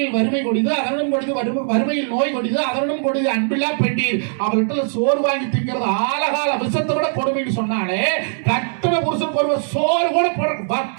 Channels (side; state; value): left; silent; digital silence